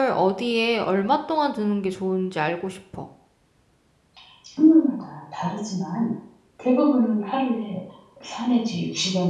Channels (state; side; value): identical; both; correlation 1.00